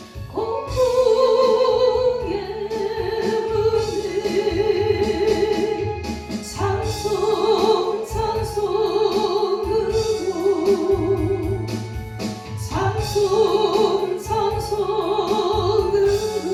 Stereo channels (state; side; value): identical; both; correlation 1.00